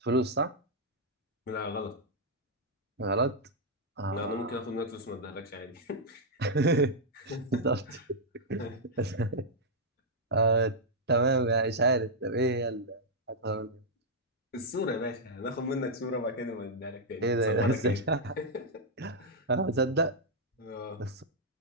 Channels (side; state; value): both; normal; correlation -0.05